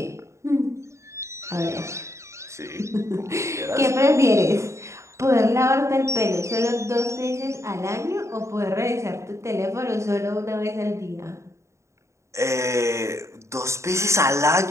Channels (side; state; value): left; late; 0.14 ms